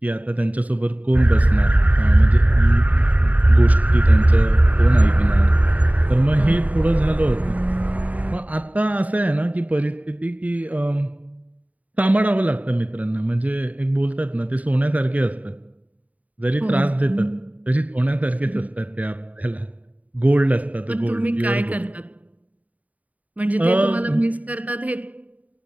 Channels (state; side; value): late; left; 0.071 ms